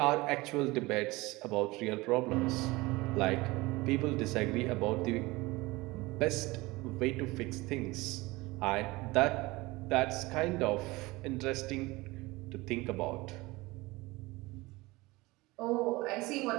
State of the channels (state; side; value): quieter; left; 21.6 dB